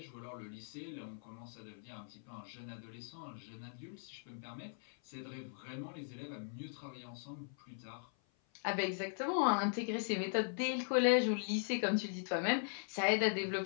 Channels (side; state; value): right; silent; 51 dB below the other